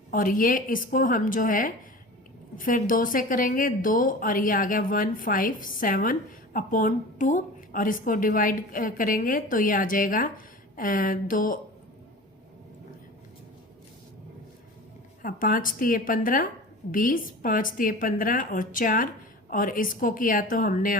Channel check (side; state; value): both; normal; correlation 0.36